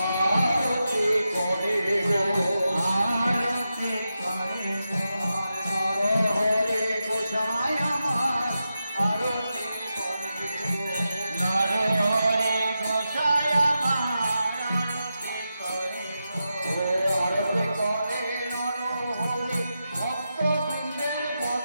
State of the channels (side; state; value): both; inverted; correlation -0.89